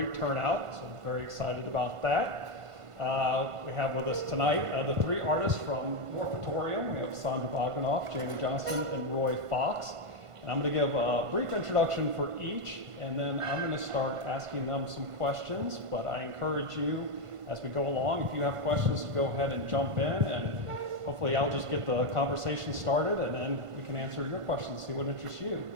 turnout, so I'm very excited about that. We have with us tonight the three artists from Morphatoreum. We have Sondra Bogdonoff, Jamie Johnston, and Roy Fox. And I'm going to give a brief introduction for each, and then I'm going to start asking them some questions, but I encourage you as we go along, if you have questions, to go ahead and jump in, and hopefully I'll just get the conversation started, and then we can answer your questions, see what interests you.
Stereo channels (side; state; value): left; late; 1.5 ms